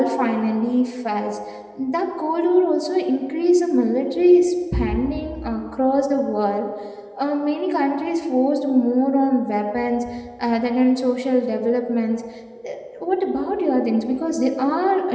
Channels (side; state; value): both; identical; correlation 1.00